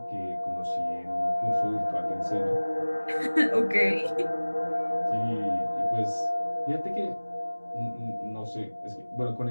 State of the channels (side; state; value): both; inverted; correlation -1.00